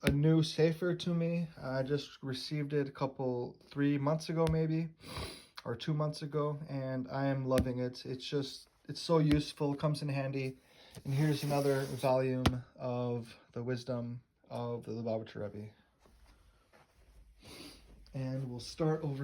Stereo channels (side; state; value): both; identical; correlation 1.00